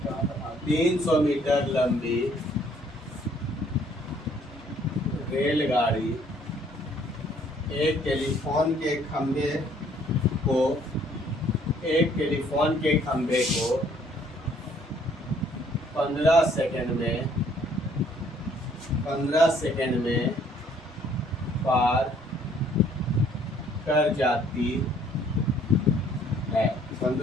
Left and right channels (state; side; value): normal; both; correlation 0.62